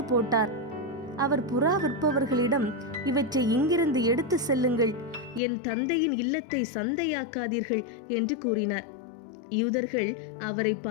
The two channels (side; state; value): right; drops out; at 5.4 s